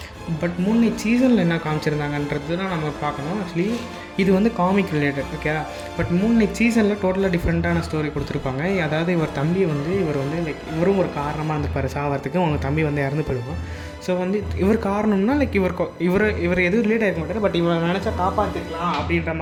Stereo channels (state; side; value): identical; both; correlation 1.00